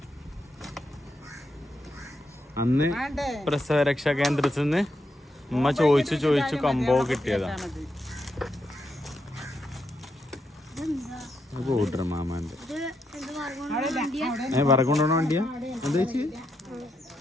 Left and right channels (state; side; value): normal; both; correlation 0.81